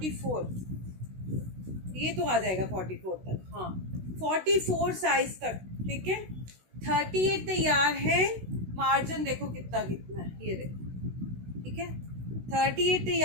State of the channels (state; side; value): late; left; 16 ms